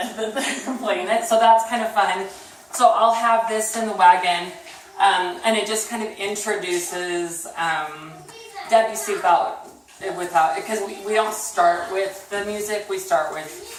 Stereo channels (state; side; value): identical; both; correlation 1.00